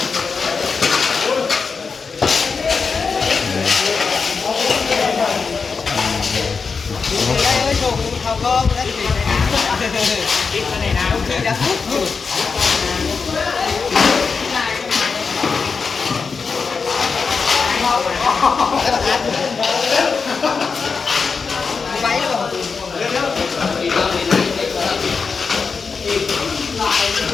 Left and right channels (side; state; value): right; quieter; 5.1 dB